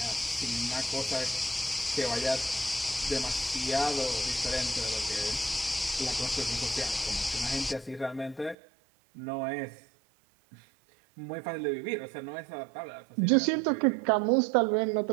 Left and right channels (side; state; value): left; drops out; at 8.6 s